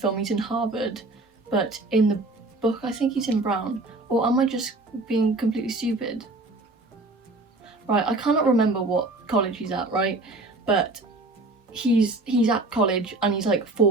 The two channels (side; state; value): left; quieter; 3.0 dB